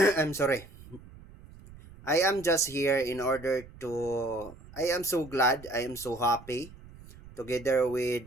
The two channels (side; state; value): right; noise; rumble, 19 dB below the sound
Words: I'm sorry. I am just here in order to I am so glad, I am so happy together